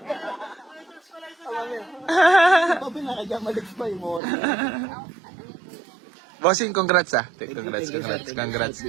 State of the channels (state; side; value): drops out; left; at 4.2 s